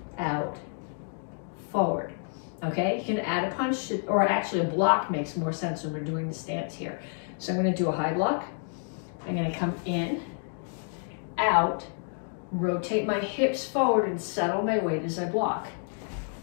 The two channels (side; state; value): right; silent; 58 dB below the other